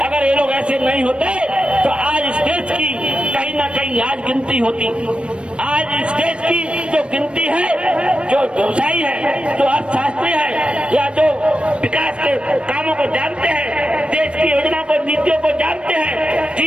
ये लोग ऐसे नहीं होते तो आज इस देश की कहीं ना कहीं आज गिनती होती। आज इस देश की जो गिनती है, जो व्यवसायी है, जो अर्थशास्त्री है या जो विकास के कामों को जानते हैं, देश की योजना को, नीतियों को जानते हैं,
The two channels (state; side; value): late; left; 0.058 ms